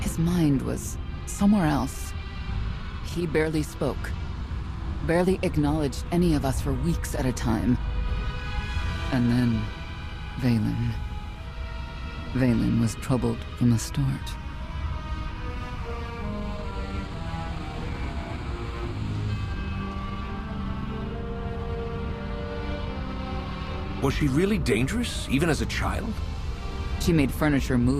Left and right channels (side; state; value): both; identical; correlation 1.00